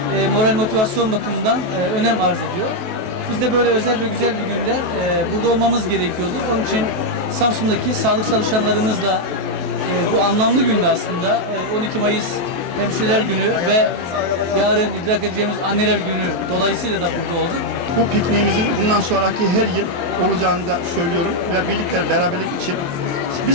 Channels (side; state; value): left; late; 23 ms